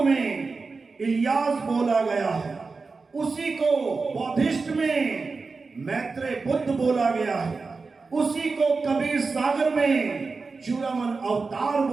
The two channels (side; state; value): left; quieter; 4.3 dB